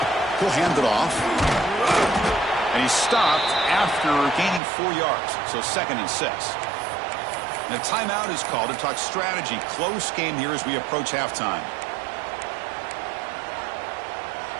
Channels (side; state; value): left; drops out; at 4.6 s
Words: He'll hand it off. And he's stopped after gaining 4 yards. So 2nd and 6. And a timeout is called to talk strategy. Close game here as we approach halftime.